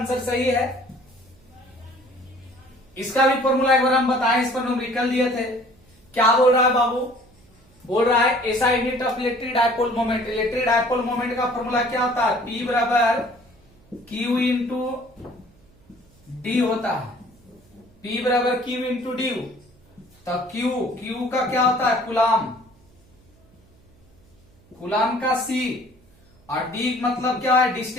सही है। इसका भी फॉर्मूला एक बार हम बताएं, इस पर न्यूमेरिकल दिए थे। क्या बोल रहा है बाबू, बोल रहा है ऐसा unit of electric dipole moment, electric dipole moment का फॉर्मूला क्या होता है, P बराबर Q इंटू डी होता है, P बराबर Q इंटू डी। तो Q का क्या होता है, कुलाम, कुलाम का C, और D मतलब क्या है,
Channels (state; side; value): noise; right; hum, 30 dB below the sound